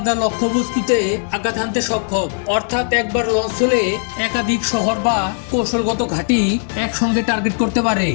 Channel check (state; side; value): silent; right; digital silence